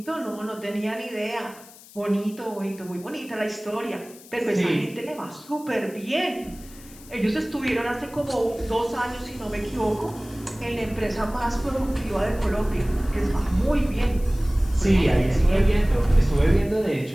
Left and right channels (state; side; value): noise; left; hiss, 21 dB below the sound